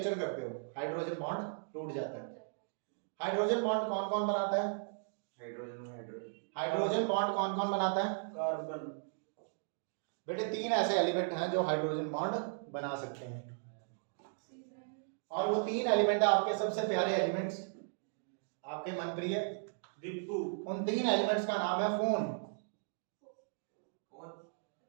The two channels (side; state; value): left; silent; digital silence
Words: करते हो, हाइड्रोजन बॉन्ड टूट जाता है। हाइड्रोजन बॉन्ड कौन कौन बनाता है? हाइड्रोजन बॉन्ड कौन कौन बनाता है? कार्बन। बेटे 3 ऐसे एलिमेंट हैं जो हाइड्रोजन बॉन्ड बना सकते हैं, और वो 3 एलिमेंट आपके सबसे प्यारे एलिमेंट्स, आपके मनप्रिय दीपू। उन 3 एलिमेंट्स का नाम है phone.